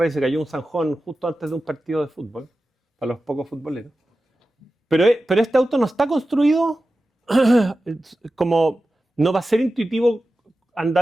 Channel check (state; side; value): normal; both; correlation 0.94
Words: y se cayó un zanjón justo antes de un partido de fútbol, para los pocos futboleros. Pero este auto no está construido como... No va a ser intuitivo